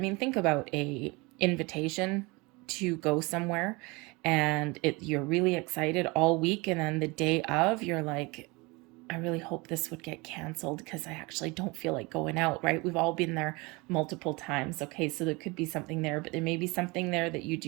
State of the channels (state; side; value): quieter; left; 25.7 dB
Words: think about a invitation to go somewhere and you're really excited all week, and then the day of you're like, I really hope this would get canceled because I actually don't feel like going out, right? We've all been there multiple times. Okay, so there could be something there, but there may be something there that you